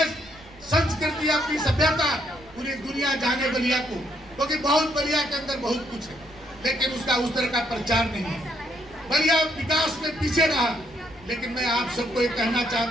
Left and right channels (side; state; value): right; noise; rumble, 24 dB below the sound